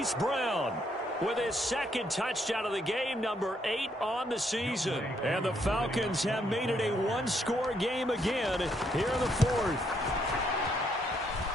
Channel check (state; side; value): normal; both; correlation 0.73